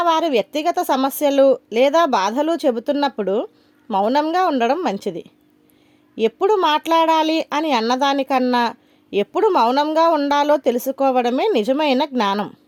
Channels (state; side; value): identical; both; correlation 1.00